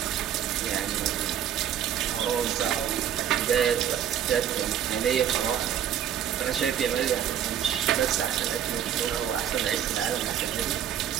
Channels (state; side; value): quieter; left; 9.8 dB